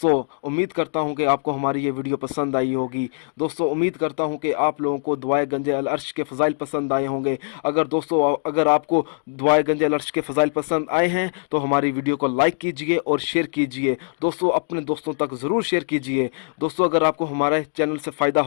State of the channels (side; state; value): right; silent; digital silence